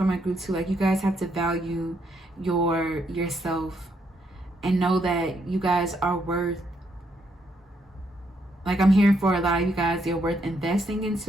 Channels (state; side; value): normal; both; correlation 0.75